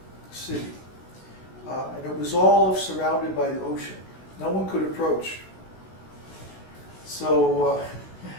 city. And it was all surrounded by the ocean. No one could approach. So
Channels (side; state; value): right; late; 16 ms